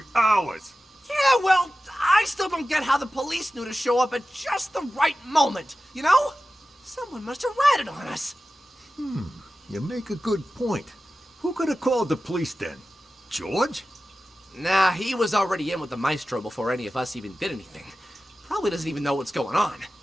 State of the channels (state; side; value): normal; both; correlation 0.94